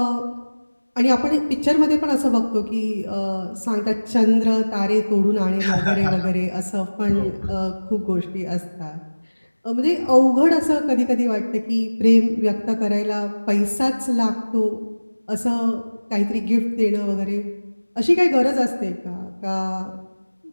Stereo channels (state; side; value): inverted; both; correlation -1.00